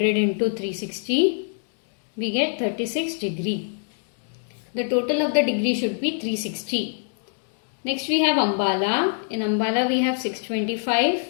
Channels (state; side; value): silent; right; 62 dB below the other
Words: into 360. We get 36 degree. The total of the degree should be 360. Next we have Ambala. In Ambala we have 625,